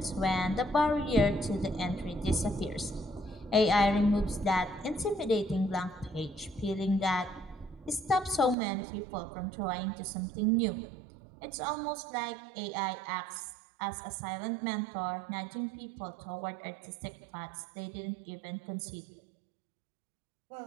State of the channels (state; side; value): drops out; left; at 8.6 s